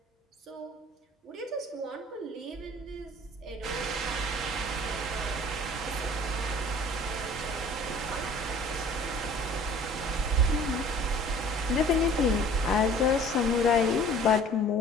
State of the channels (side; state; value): both; normal; correlation 0.49